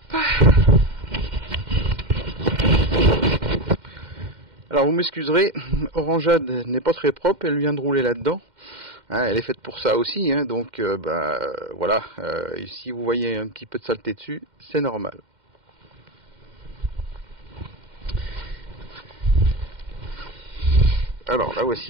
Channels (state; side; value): late; left; 2.1 ms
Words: Alors vous m'excuserez, Orangeade n'est pas très propre, elle vient de rouler là-dedans. Hein, elle est faite pour ça aussi, hein, donc voilà, si vous voyez un petit peu de saleté dessus, c'est normal. Alors là